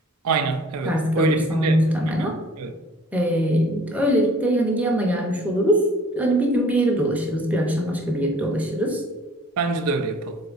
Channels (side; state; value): both; normal; correlation 0.53